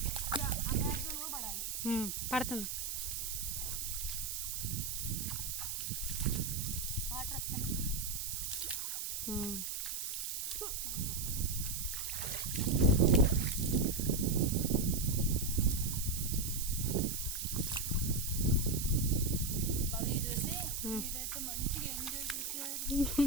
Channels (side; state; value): right; noise; hiss, 3 dB below the sound